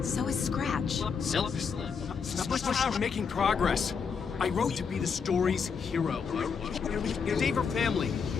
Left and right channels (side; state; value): right; quieter; 6.0 dB